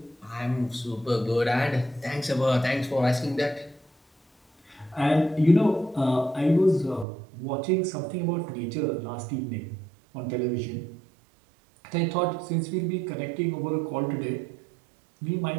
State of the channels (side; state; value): left; drops out; at 7.1 s